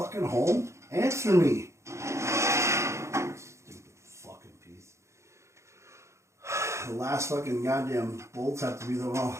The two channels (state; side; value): late; left; 0.14 ms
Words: home? Answer me. Stupid fucking piece. The last fucking goddamn bolts have to be the